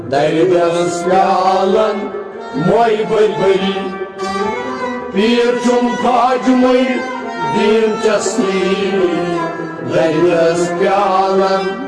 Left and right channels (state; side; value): identical; both; correlation 1.00